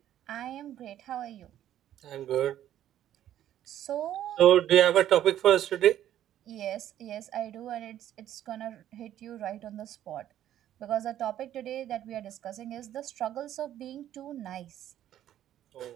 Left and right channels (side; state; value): left; quieter; 11.7 dB